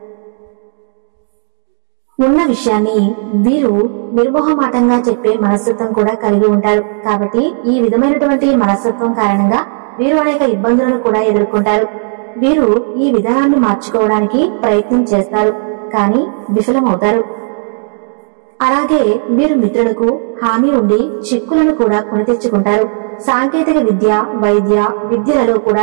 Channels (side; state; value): left; silent; 58 dB below the other